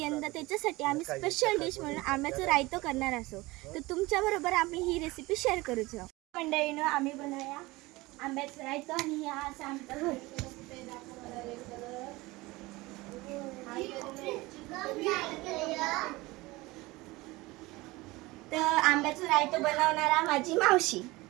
त्याच्यासाठी आम्ही स्पेशल डिश म्हणून आंब्याचं रायतो करणार असो. तर तुमच्याबरोबर आम्ही ही रेसिपी शेअर करूचो. मंडळींनो, आम्ही बनवूया आंब्याचं रायतो आणि हे असं आमचं घर. तर आंब्याचं रायतो बनवणारा माझी मावशी.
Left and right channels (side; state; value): left; quieter; 21.3 dB